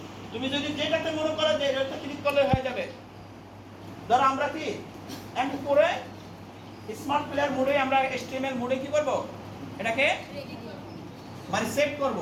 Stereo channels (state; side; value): identical; both; correlation 1.00